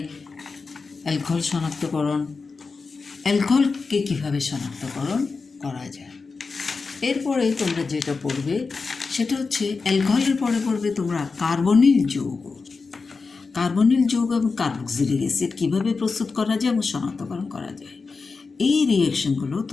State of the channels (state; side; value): quieter; right; 4.4 dB